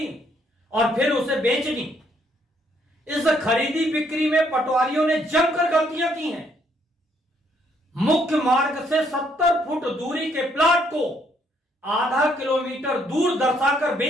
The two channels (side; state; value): both; normal; correlation 0.70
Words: और फिर उसे बेच दी। इस खरीदी बिक्री में पटवारियों ने जमकर गलतियां की हैं। मुख्य मार्ग से 70 फुट दूरी के प्लाट को आधा किलोमीटर दूर दर्शाकर